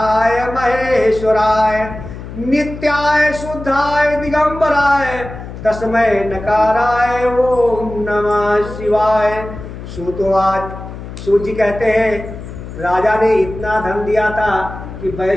महेश्वराय नित्याय शुद्धाय दिगंबराय तस्मै नकाराय ओम नमः शिवाय। सूत जी कहते हैं राजा ने इतना धन दिया था कि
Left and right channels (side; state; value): left; noise; hum, 11 dB below the sound